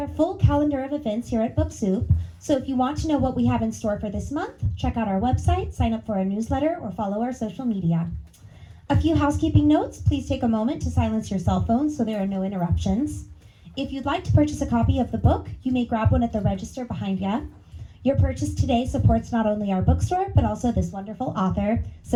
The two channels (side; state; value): both; identical; correlation 1.00